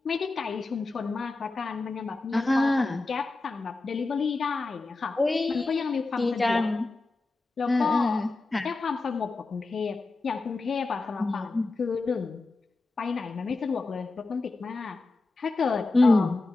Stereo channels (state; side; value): quieter; right; 3.4 dB